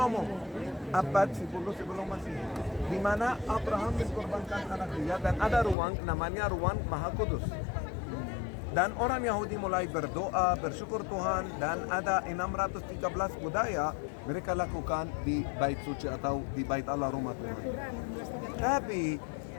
Abad 10 sebelum Masehi. Di mana Abraham mengkorbankan anak dia dan ada ruang namanya ruang Maha Kudus. Dan orang Yahudi mulai berdoa, bersyukur Tuhan, dan ada 613 budaya mereka lakukan di bait suci atau di bait Allah rumah Tuhan. Tapi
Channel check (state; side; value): drops out; right; at 5.8 s